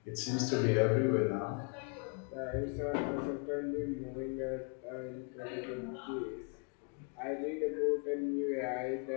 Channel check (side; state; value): right; quieter; 37.0 dB